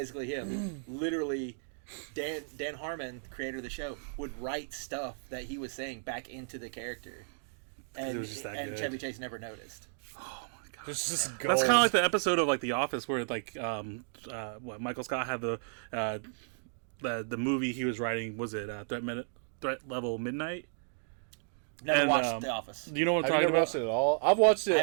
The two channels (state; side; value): silent; left; digital silence